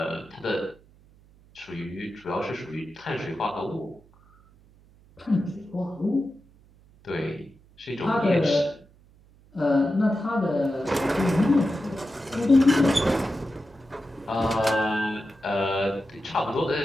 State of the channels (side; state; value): right; noise; hum, 28 dB below the sound